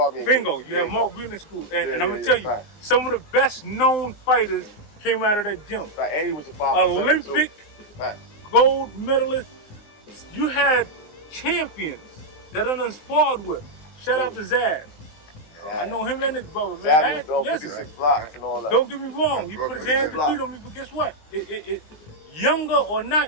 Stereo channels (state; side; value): late; right; 19 ms